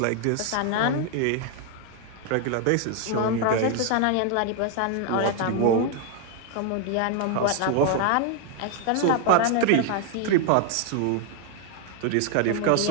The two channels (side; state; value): both; different; correlation 0.00